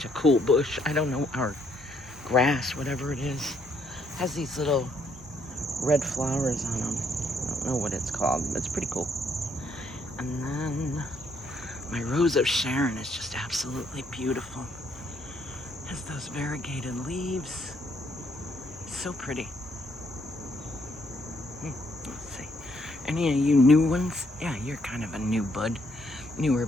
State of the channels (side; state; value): both; normal; correlation 0.71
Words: a cool bush. I don't know, our grass, whatever it is, has these little red flowers on them. I don't know what it's called, but it's pretty cool. And then my Rose of Sharon is just absolutely beautiful. Has those variegated leaves. So pretty. Let's see. Any of you new ones? Yeah, you're kind of a new bud. Newer